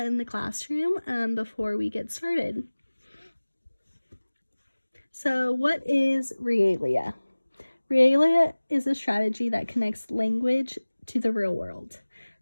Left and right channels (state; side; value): inverted; both; correlation -1.00